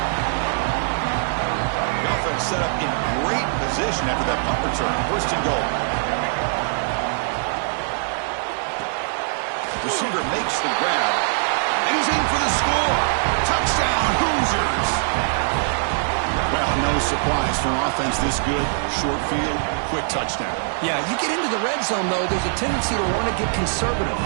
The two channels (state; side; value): silent; left; digital silence